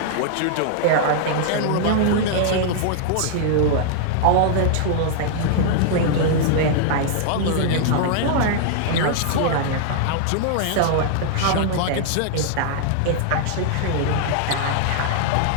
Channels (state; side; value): different; both; correlation -0.01